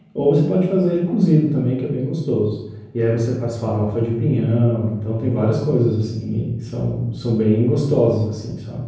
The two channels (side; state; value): both; identical; correlation 1.00